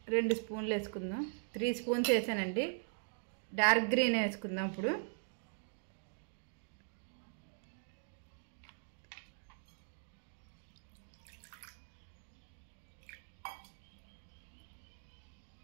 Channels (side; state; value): left; silent; digital silence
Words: రెండు స్పూన్లు వేసుకుందాం. 3 స్పూన్స్ వేసానండి. డార్క్ గ్రీన్ వేసుకుందాం. ఇప్పుడు